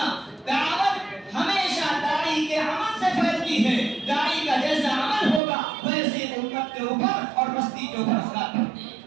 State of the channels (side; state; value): left; drops out; at 5.4 s